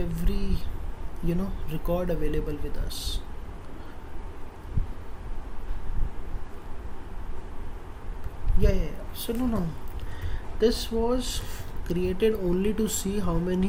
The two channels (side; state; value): both; identical; correlation 1.00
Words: record available with us. Yeah. So no. This was created only to see how